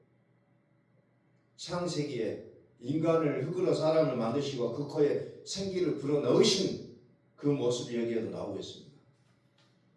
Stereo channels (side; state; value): both; identical; correlation 1.00